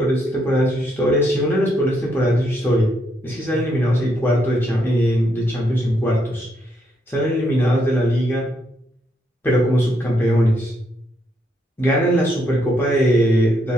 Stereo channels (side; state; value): both; normal; correlation 0.76